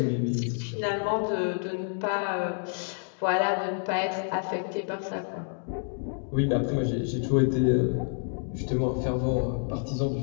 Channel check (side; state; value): right; silent; 59 dB below the other